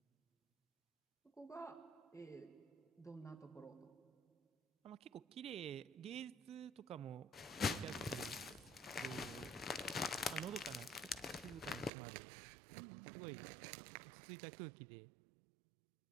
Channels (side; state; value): left; drops out; at 11.9 s